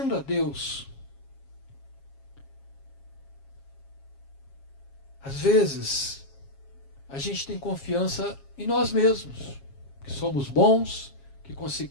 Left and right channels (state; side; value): late; right; 7.3 ms